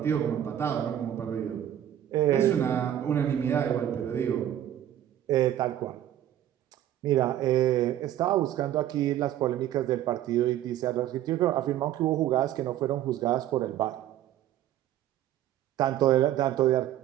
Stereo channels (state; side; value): quieter; left; 11.9 dB